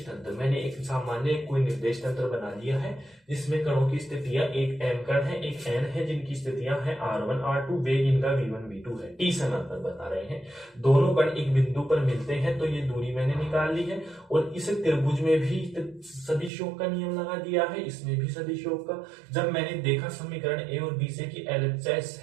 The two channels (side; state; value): left; drops out; at 16.5 s